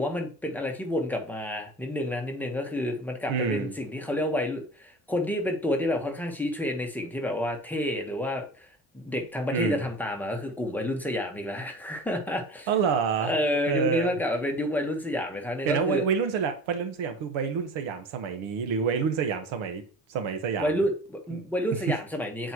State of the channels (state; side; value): normal; both; correlation 0.39